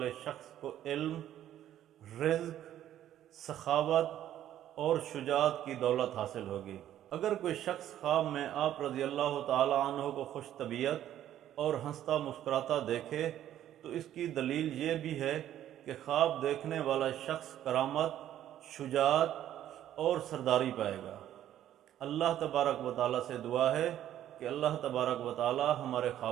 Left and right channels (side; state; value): left; quieter; 11.8 dB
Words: شخص کو علم، رزق، سخاوت اور شجاعت کی دولت حاصل ہوگی۔ اگر کوئی شخص خواب میں آپ رضی اللہ تعالی عنہ کو خوش طبیعت اور ہنستا مسکراتا دیکھے تو اس کی دلیل یہ بھی ہے کہ خواب دیکھنے والا شخص کرامت، شجاعت اور سرداری پائے گا۔ اللہ تبارک و تعالیٰ سے دعا ہے کہ اللہ تبارک و تعالیٰ ہمارے